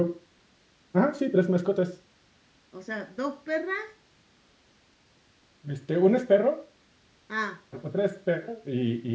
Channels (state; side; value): identical; both; correlation 1.00